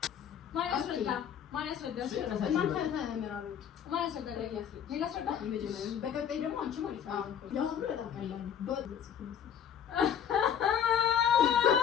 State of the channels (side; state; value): right; quieter; 8.7 dB